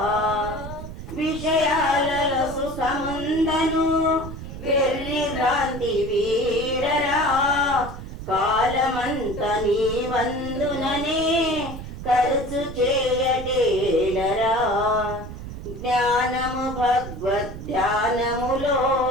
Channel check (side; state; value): right; noise; rumble, 10 dB below the sound